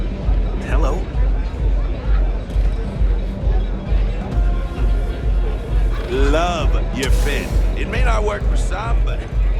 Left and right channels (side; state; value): both; identical; correlation 1.00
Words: Hello. Love your fit. It may not work for some, but